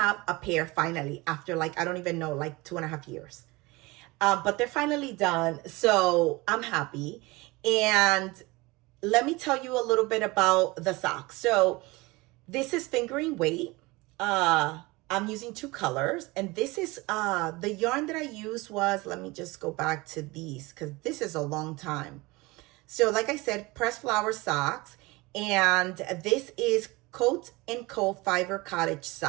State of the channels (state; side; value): quieter; left; 23.0 dB